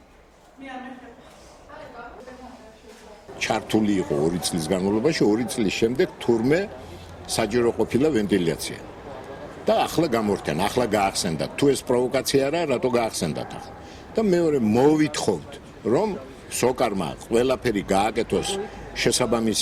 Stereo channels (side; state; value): both; identical; correlation 1.00